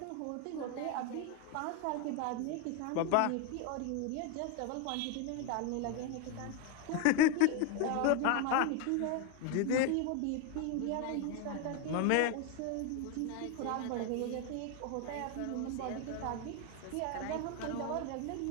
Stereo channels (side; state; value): both; different; correlation 0.01